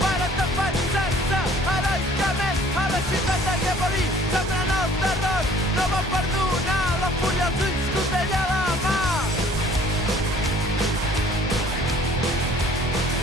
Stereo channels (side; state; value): both; normal; correlation 0.54